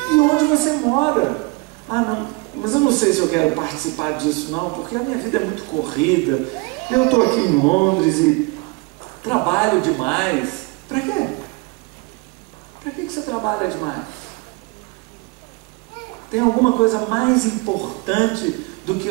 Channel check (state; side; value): quieter; left; 26.8 dB